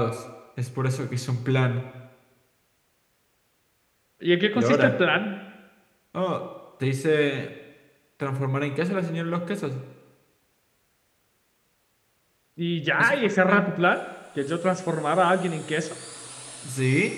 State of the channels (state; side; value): identical; both; correlation 1.00